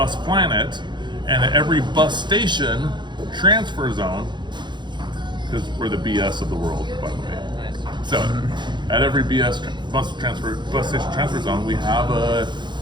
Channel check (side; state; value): left; late; 0.22 ms